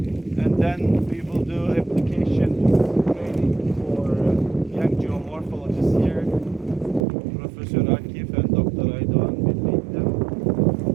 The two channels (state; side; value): drops out; left; at 7.1 s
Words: and then we will do application training for young geomorphologists here, Professor Akif and Dr. Aydoğan will lead them.